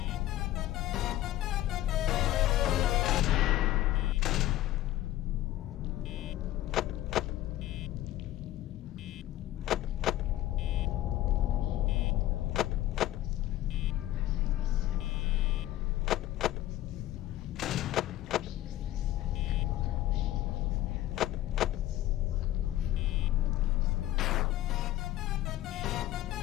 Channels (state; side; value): quieter; right; 14.5 dB